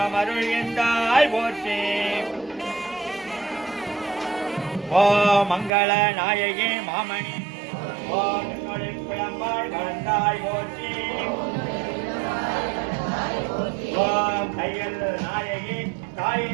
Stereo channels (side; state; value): left; drops out; at 5.7 s